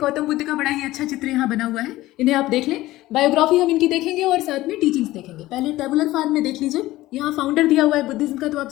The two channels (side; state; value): right; quieter; 16.9 dB